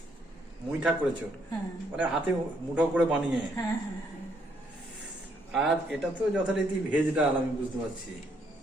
মুইঠা করেছো হ্যাঁ মানে হাতে মুঠো করে বানিয়ে। হ্যাঁ হ্যাঁ হ্যাঁ। আর এটা তো যথারীতি ভেজ ডাল, আমি বুঝতে পারছি।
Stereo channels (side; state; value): both; normal; correlation 0.71